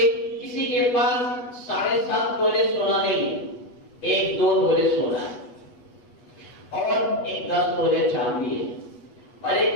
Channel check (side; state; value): right; late; 8.2 ms